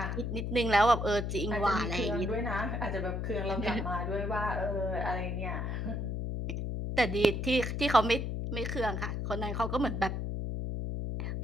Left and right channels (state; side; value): noise; left; hum, 2 dB below the sound